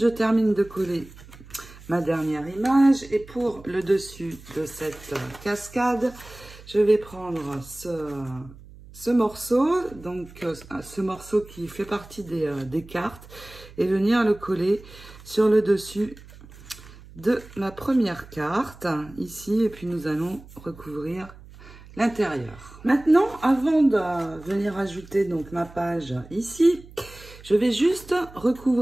termine de coller ma dernière image et pour le dessus de cette cascade, je vais prendre ce morceau, donc ce morceau qui fait partie des cartes, et venir le coller sur le dessus de ma première carte, ici, et puis nous allons recouvrir l'intérieur. Maintenant, avant de venir ajouter donc ma page ici, je vais juste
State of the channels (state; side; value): noise; right; hum, 20 dB below the sound